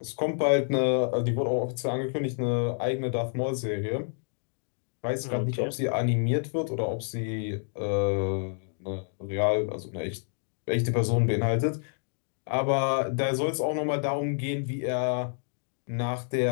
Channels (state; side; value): silent; right; digital silence